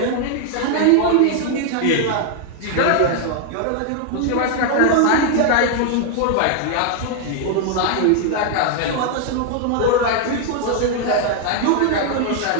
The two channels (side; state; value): both; different; correlation 0.00